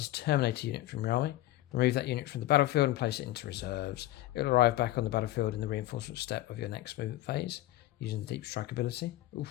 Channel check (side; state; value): right; quieter; 15.6 dB